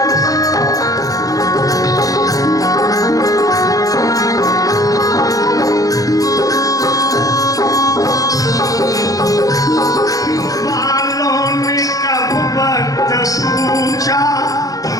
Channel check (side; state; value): right; late; 0.17 ms